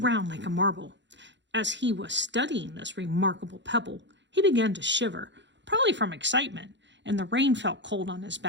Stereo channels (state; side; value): late; left; 0.52 ms